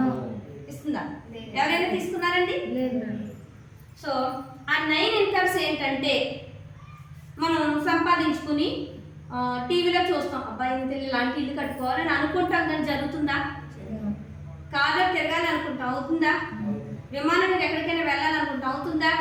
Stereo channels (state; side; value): identical; both; correlation 1.00